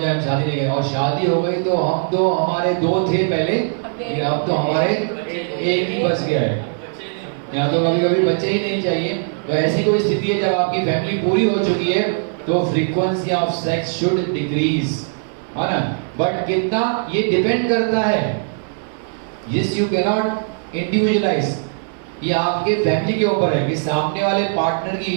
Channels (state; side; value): silent; left; digital silence